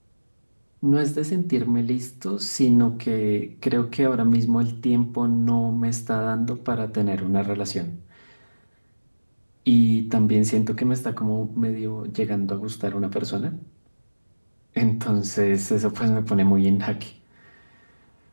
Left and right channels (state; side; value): inverted; both; correlation -1.00